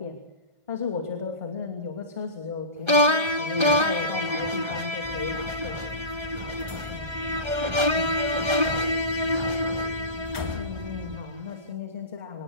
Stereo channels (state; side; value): late; left; 1.3 ms